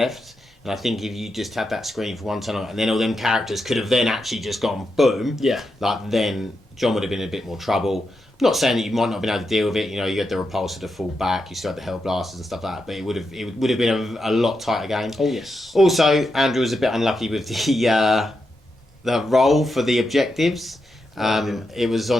And I think if you just had that screen for one turn, and then all them characters could have then actually just gone boom. Yeah. Like then John would have been in a bit more trouble. Not saying that you might not have been able to deal with it. You know, you had the repulsor to fall back, you still had the hell blasters and stuff like that. But it would have been a lot tighter game. Oh yes. Also, Andrew was a bit unlucky with the roll for the objectives. It was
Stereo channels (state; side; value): normal; both; correlation 0.86